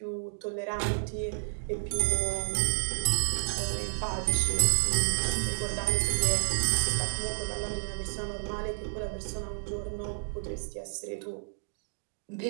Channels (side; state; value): left; silent; digital silence